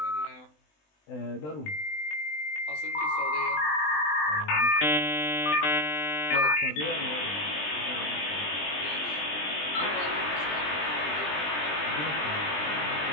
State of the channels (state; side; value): late; right; 20 ms